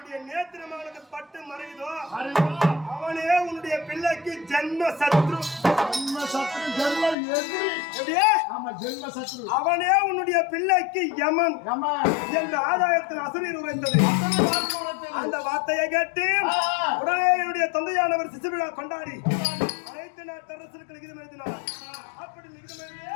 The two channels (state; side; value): drops out; right; at 7.2 s